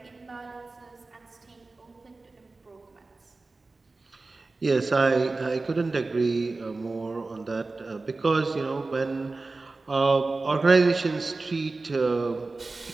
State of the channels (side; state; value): left; quieter; 3.5 dB